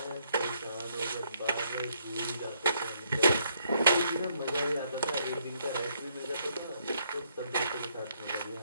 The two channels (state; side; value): inverted; both; correlation -0.72